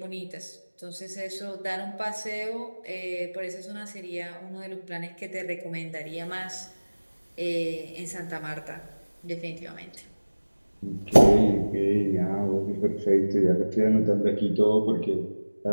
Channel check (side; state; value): both; inverted; correlation -1.00